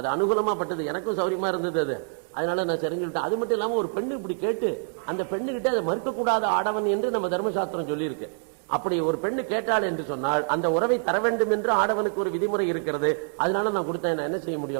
அனுகூலமா பட்டது, எனக்கும் சௌரியமா இருந்தது அது. அதனால நான் சரிஞ்சுட்டேன். அது மட்டும் இல்லாமல் ஒரு பெண்ணு இப்படி கேட்டு அந்த பெண்ணுகிட்ட அதை மறுக்கக்கூடாத ஆடவன் என்று நம்ம தர்மசாஸ்திரம் சொல்லியிருக்கு. அப்படி ஒரு பெண்ணு கேட்டாள் என்று சொன்னால் அந்த உறவை தர வேண்டும் என்று ஆடவனுக்கு ஒரு விதிமுறை இருக்கிறது. அதனால நான் கொடுத்தேன், நான் என்ன செய்ய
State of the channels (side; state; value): left; silent; 61 dB below the other